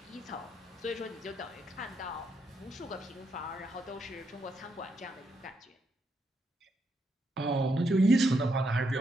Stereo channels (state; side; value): normal; both; correlation 0.78